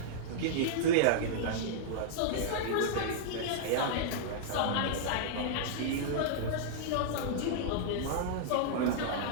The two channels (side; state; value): both; different; correlation -0.02